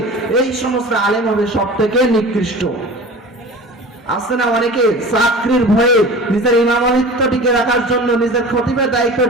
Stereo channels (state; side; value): normal; both; correlation 0.37